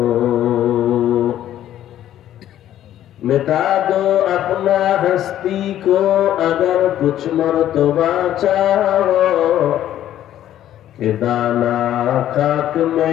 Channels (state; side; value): quieter; right; 12.0 dB